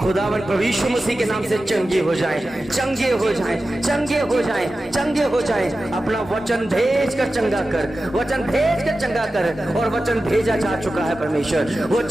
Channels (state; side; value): normal; both; correlation 0.94